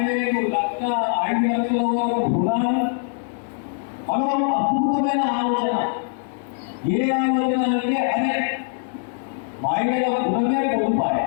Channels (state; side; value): silent; right; digital silence